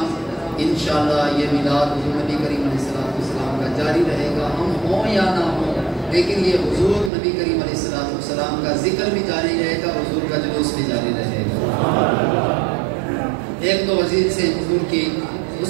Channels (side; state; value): left; drops out; at 7.1 s